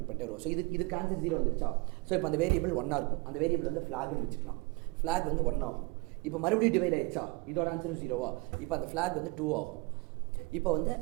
பண்ணிட்டே வரும். ஸோ இதுக்கு ஆன்சர் 0 வந்துருச்சா? ஸோ இப்போ அந்த வேரியபிள் 1 இருக்கும். அந்த வேரியபிள் வந்து ஃப்ளாக்னு வச்சுக்கலாம். ஃப்ளாக் வந்து 1 ஆகும். இப்போ மறுபடியும் டிவைட் ஆயிடுச்சா? இதோட ஆன்சரும் 0வா? இப்போ அந்த ஃப்ளாக் வந்து 2 ஆகும். இப்போ வந்து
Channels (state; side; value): quieter; left; 27.4 dB